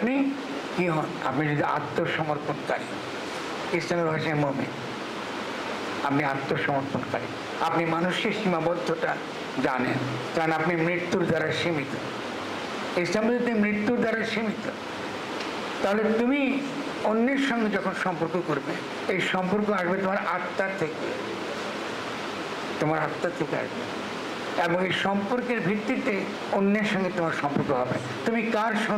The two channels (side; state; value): both; identical; correlation 1.00